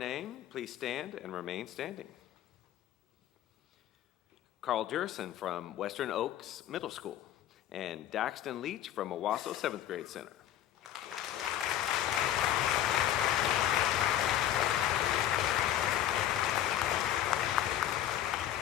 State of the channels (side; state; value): right; quieter; 11.7 dB